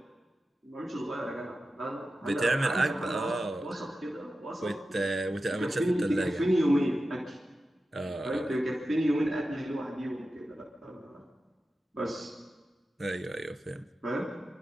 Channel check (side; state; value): both; normal; correlation 0.92